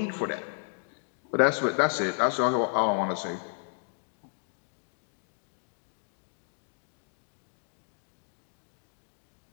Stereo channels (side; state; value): right; silent; digital silence